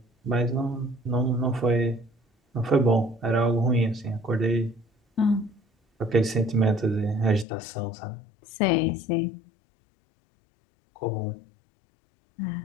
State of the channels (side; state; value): right; drops out; at 7.5 s